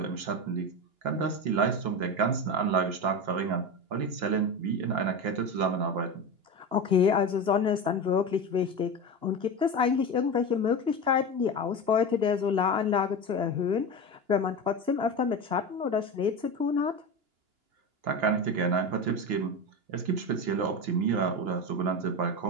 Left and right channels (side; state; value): left; late; 2.9 ms